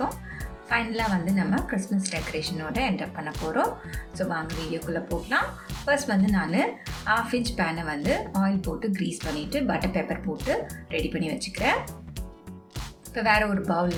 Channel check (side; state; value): both; identical; correlation 1.00